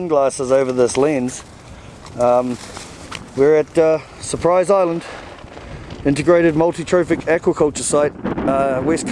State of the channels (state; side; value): identical; both; correlation 1.00